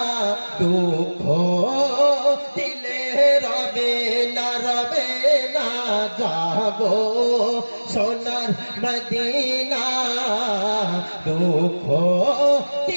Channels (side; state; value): both; inverted; correlation -1.00